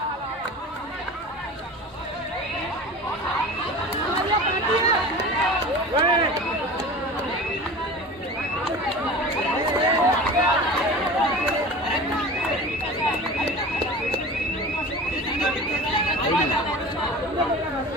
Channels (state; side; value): normal; both; correlation 0.35